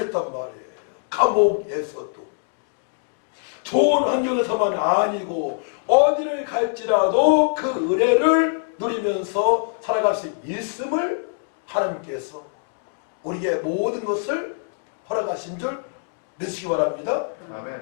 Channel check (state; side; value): silent; right; digital silence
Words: 말이에요. 감옥에서도. 좋은 환경에서만 아니고 어디를 갈지라도 그 은혜를 누리면서 살아갈 수 있음을 하나님께서 우리에게 모든 것을 허락하신 줄 믿으시기 바랍니다.